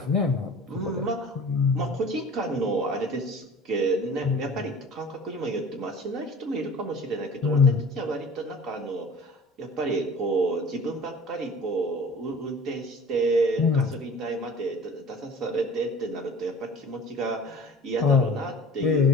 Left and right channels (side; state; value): both; normal; correlation 0.43